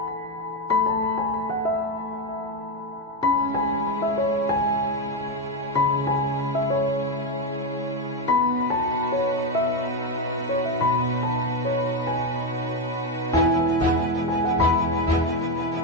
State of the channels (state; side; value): normal; both; correlation 0.09